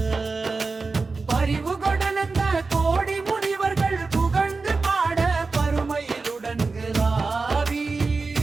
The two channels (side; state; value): left; quieter; 4.1 dB